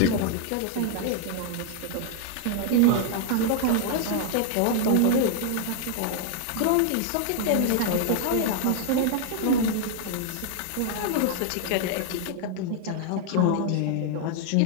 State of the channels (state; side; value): different; both; correlation 0.00